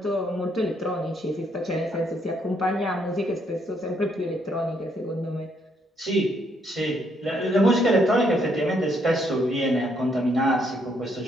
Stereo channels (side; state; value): both; normal; correlation 0.72